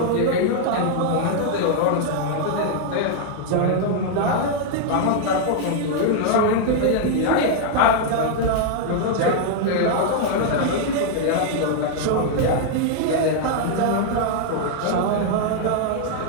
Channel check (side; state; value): both; different; correlation -0.01